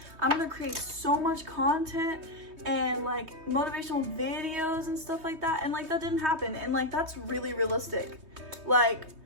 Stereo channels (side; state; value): left; late; 3.2 ms